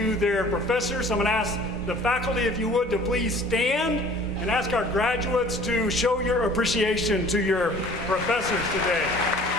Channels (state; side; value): normal; both; correlation 0.49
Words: their professors. I'm going to ask the faculty, if you would, to please stand and ask our graduates to show your appreciation to your professors today.